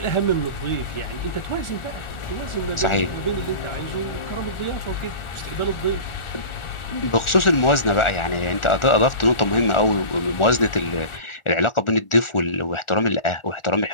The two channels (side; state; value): right; late; 1.4 ms